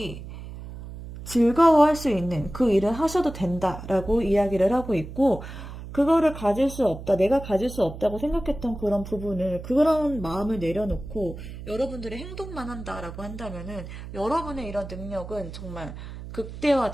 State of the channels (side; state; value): right; noise; hum, 11 dB below the sound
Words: 즐거워할 수 있는 그 일을 하셔도 된다라고 이야기를 하고 있고, 그거를 가질 수 없다, 내가 가질 수 없다고 생각했던 그런 부분을, 그런 마음을 내려놓고 여러분들의 행동만 한다라고 한다면은 여러분의 이런 능력은 정말